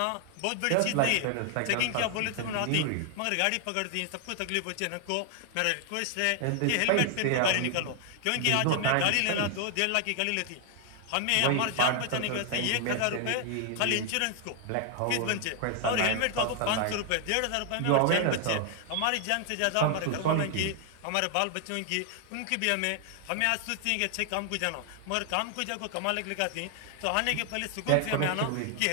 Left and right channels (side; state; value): both; different; correlation 0.00